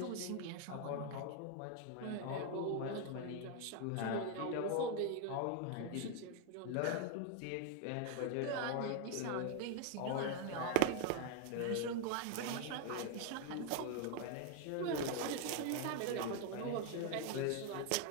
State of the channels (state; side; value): different; both; correlation 0.01